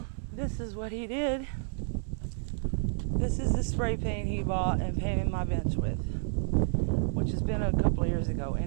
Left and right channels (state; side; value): silent; left; 58 dB below the other